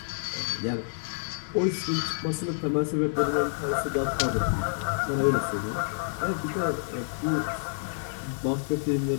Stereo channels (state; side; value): silent; right; digital silence